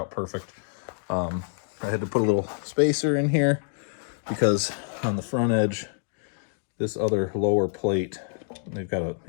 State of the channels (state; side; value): silent; right; digital silence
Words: perfect. I had to put a little spacer in here because on the front edge, this other lower plate, they've got a,